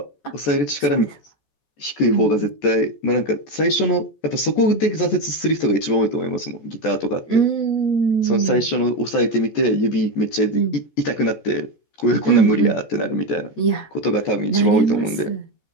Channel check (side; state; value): right; late; 14 ms